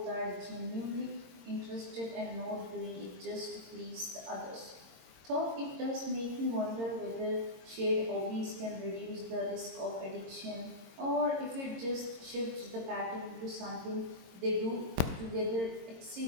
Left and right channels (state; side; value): late; left; 22 ms